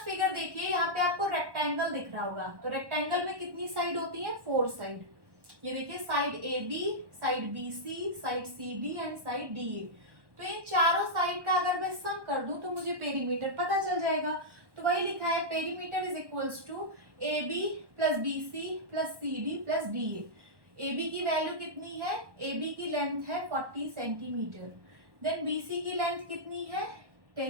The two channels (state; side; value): late; left; 1.1 ms